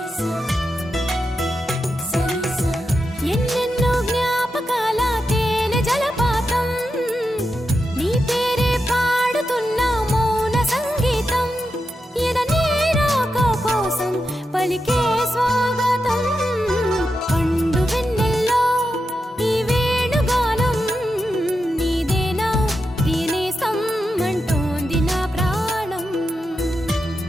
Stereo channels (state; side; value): normal; both; correlation 0.88